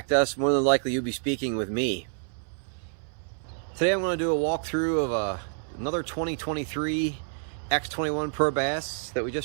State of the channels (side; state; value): left; silent; 59 dB below the other